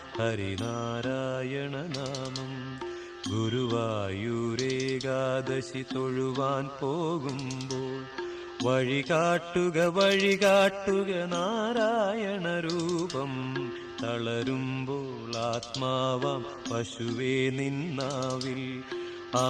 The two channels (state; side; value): identical; both; correlation 1.00